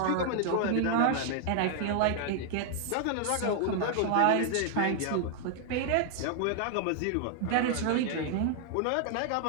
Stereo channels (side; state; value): both; different; correlation 0.00